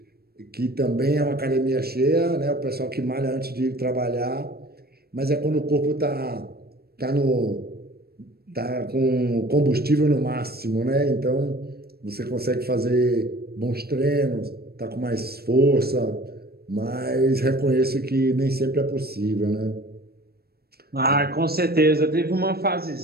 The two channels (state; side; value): late; left; 0.45 ms